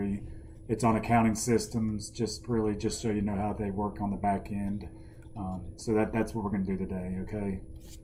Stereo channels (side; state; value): both; identical; correlation 1.00